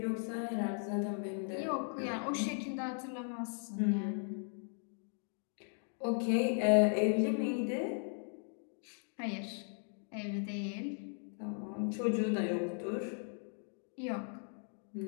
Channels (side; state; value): right; silent; 53 dB below the other